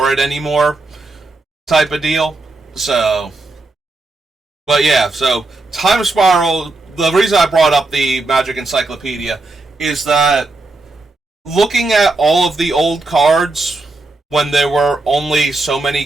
it anymore. type of deal. So, but yeah, so Time Spiral, the reason I brought up the Magic Encyclopedia is that looking at all of the old cards when there were only so many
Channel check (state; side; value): quieter; left; 3.2 dB